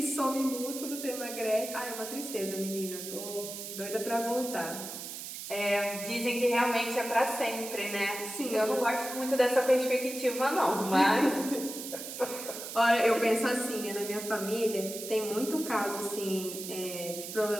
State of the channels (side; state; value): right; noise; hiss, 8 dB below the sound